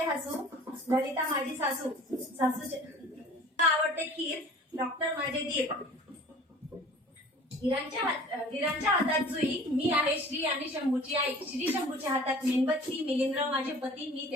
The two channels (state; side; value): normal; both; correlation 0.45